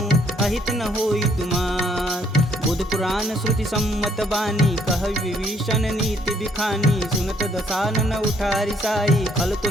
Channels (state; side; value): normal; both; correlation 0.66